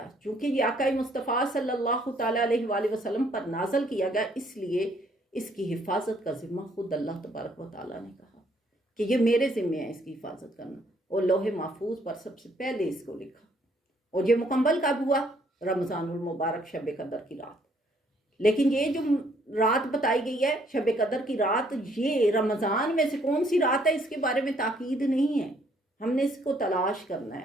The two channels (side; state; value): both; normal; correlation 0.66